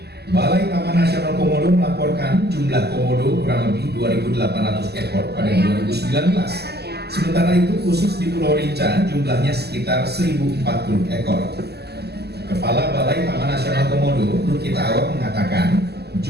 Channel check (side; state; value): left; late; 0.47 ms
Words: Balai Taman Nasional Komodo melaporkan jumlah komodo kurang lebih 2.800 ekor pada 2019. Sementara itu khusus di Pulau Rinca jumlahnya sekitar 1.040 ekor. Kepala Balai Taman Nasional Komodo, Lukita Awak mengatakan